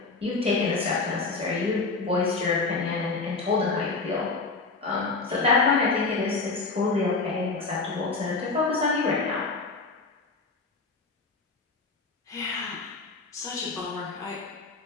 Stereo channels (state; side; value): quieter; right; 3.9 dB